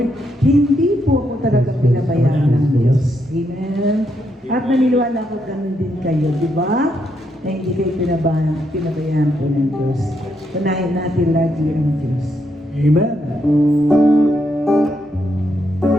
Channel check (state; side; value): normal; both; correlation 0.79